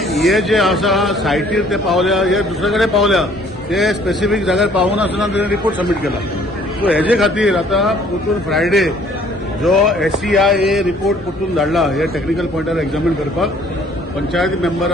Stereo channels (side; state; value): both; normal; correlation 0.58